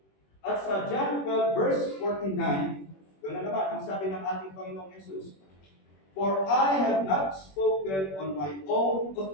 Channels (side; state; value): right; late; 21 ms